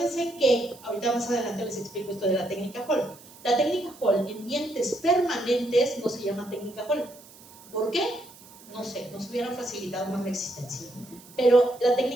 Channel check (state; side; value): noise; right; hiss, 22 dB below the sound